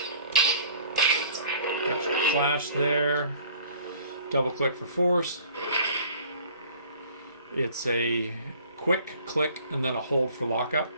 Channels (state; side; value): inverted; both; correlation -0.51